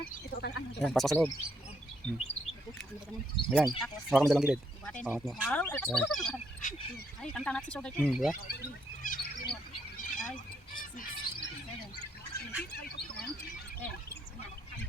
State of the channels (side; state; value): both; normal; correlation 0.73